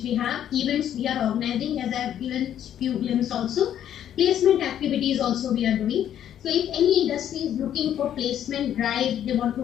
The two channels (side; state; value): right; quieter; 10.4 dB